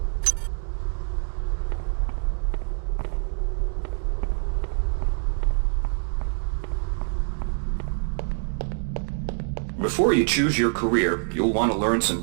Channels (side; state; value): left; silent; digital silence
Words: Before you choose your career, you'll want to learn